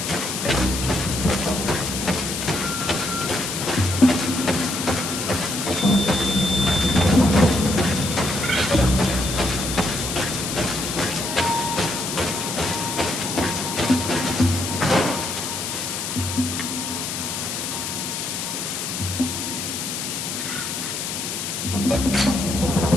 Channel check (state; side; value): noise; left; hiss, 4 dB below the sound